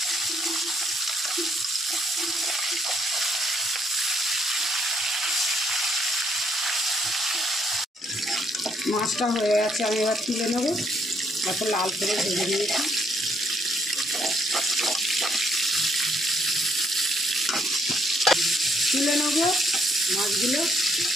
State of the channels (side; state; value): both; normal; correlation 0.71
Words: মাছটা হয়ে গেছে, আমি এবার তুলে নেব। এত লাল করে ভেজে নিয়েছি। তুলে নেব মাছগুলো।